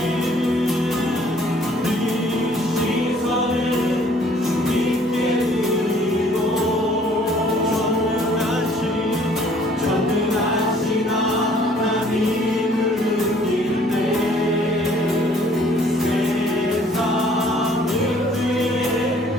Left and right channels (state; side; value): normal; both; correlation 0.58